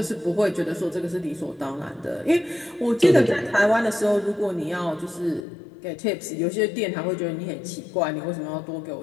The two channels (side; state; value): right; drops out; at 5.4 s